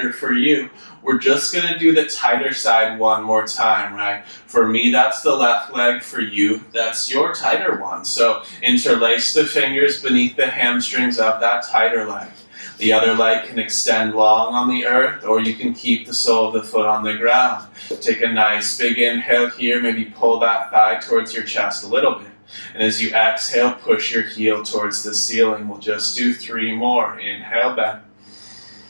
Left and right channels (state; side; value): inverted; both; correlation -1.00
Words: for you, we're just going to do the tighter side one more time, right? For me, that's the left leg. For you, that's your tighter one. So interlace the fingers beneath the hamstrings of that tighter leg. The other leg can extend long on the earth, or you can keep the sole of the foot on the ground. Take a nice big inhale here. Maybe pull that thigh towards your chest a little bit. And as you exhale, push your heel towards the ceiling. We'll just do 3 more. Inhale, bend.